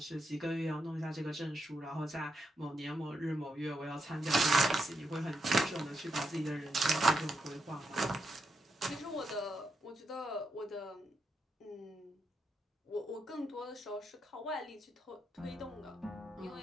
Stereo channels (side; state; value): both; normal; correlation 0.83